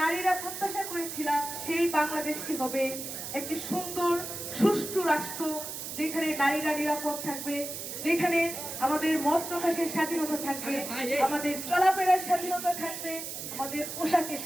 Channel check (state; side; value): noise; right; hiss, 7 dB below the sound